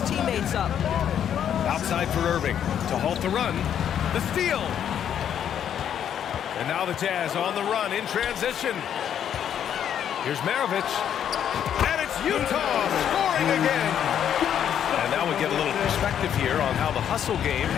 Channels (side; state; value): right; quieter; 9.3 dB